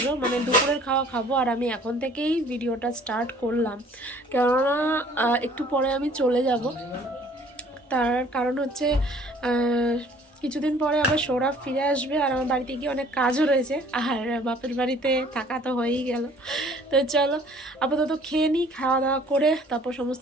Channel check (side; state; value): both; normal; correlation 0.54